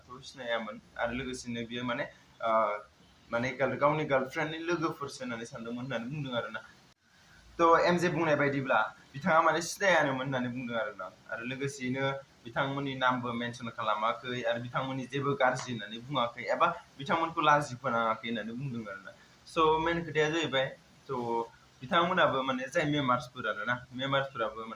थ' सिनायामोन आरो लोगोसेनो बियो माने गावनि गार्लफ्रेन्डनि लोगोफोरसो होननानै सानदोंमोन होननानै बुंदों आरोना थ' एमजे बुंनाय बायदिब्ला बिथाङा माने सिनायानोमोन होननानै बुंदों आरोना आरो लोगोसेयैनो बिथांमोननि नामबो मेनसन खालामाखै आरो बिथांमोननि जेबो गाज्रि होननानै बुङाखै एबा बिथांमोनखौ लाजि फोनाङाखै होननानै बुंदों आरोना स' मेन खोथाया जाहैबाय थ' बिथांमोनाबो माने जाय मेम्बार्सफोर आरोना मेम्बार्सफोराबो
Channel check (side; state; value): both; identical; correlation 1.00